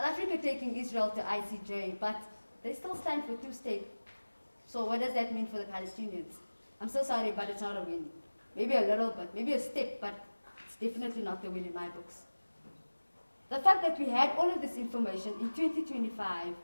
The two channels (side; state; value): both; inverted; correlation -1.00